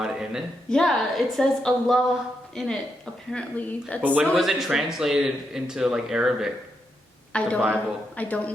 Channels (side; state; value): both; normal; correlation 0.82